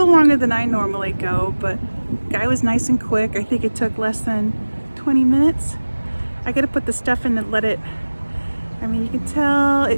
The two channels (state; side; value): inverted; both; correlation -1.00